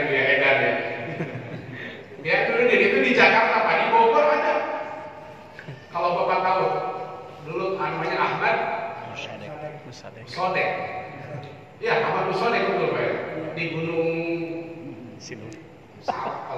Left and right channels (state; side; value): identical; both; correlation 1.00